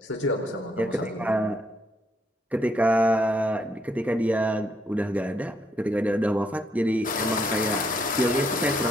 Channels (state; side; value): normal; both; correlation 0.73